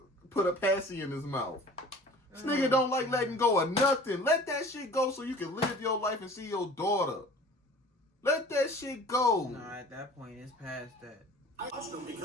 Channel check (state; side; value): normal; both; correlation 0.45